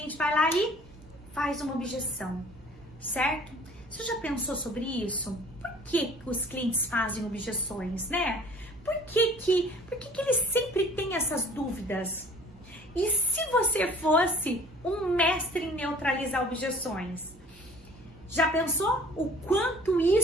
vai lá e faz uma objeção, certo? Você já pensou sobre isso? Por que os clientes fazem objeções, né? Por que eles sempre têm essas dúvidas? E se você fosse um mestre em neutralizar objeções? Já pensou o quanto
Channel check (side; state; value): both; normal; correlation 0.51